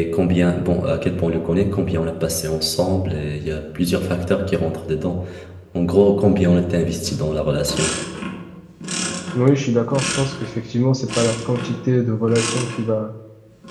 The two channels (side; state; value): both; identical; correlation 1.00